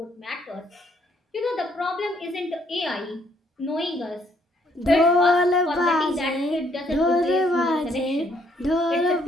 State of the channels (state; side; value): normal; both; correlation 0.68